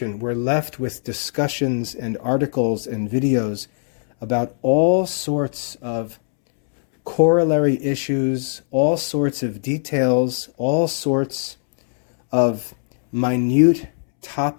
we're left with discussions and articles and videos about all sorts of corollary issues, all sorts of details, all sorts of minute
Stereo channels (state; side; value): silent; right; 65 dB below the other